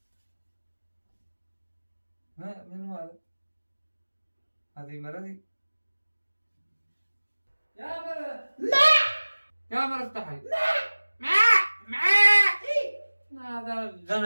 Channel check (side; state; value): both; inverted; correlation -1.00